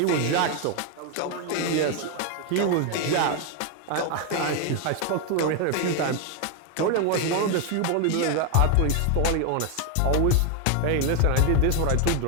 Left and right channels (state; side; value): different; both; correlation 0.01